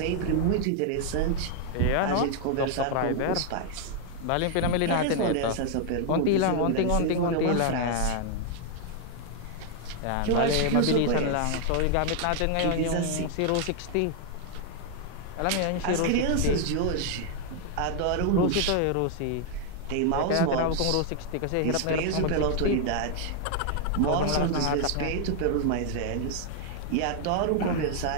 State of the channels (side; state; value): both; different; correlation 0.00